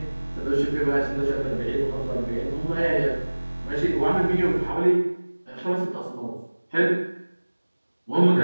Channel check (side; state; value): both; inverted; correlation -1.00